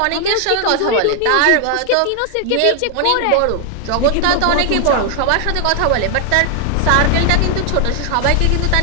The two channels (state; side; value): different; both; correlation 0.00